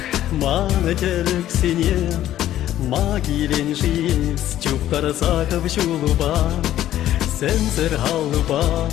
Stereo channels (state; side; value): quieter; right; 12.7 dB